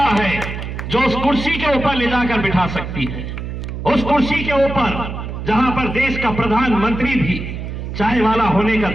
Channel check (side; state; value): right; noise; hum, 7 dB below the sound